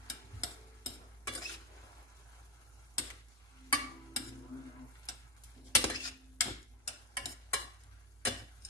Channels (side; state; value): both; normal; correlation 0.08